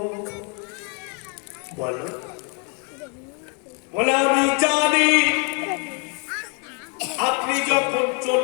বলো। বলে আমি জানি আপনি যখন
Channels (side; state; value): right; quieter; 36.8 dB